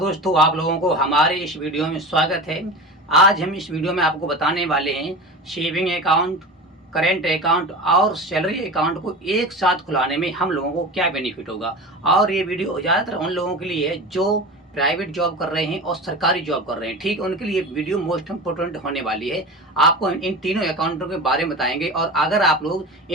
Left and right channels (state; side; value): normal; both; correlation 0.30